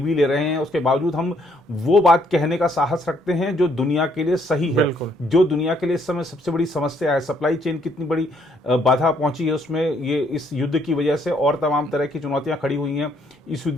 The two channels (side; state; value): both; normal; correlation 0.68